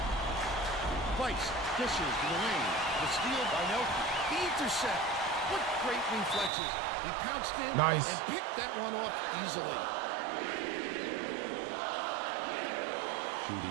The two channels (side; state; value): left; drops out; at 6.5 s